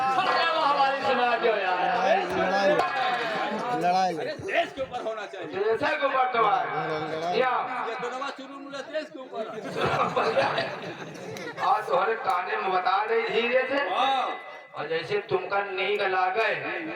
वो हमारी सुना जो यार। लड़ाई देश के ऊपर होना चाहिए। जैसा को बर्तमान या ये दोनों चुरू देश के ऊपर। आज तुम्हारे काने में बता रही धीरे से और जैसे तुमका नीक लागे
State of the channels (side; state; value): both; identical; correlation 1.00